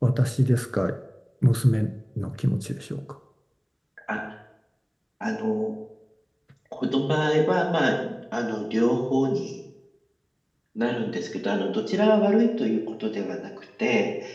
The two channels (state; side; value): identical; both; correlation 1.00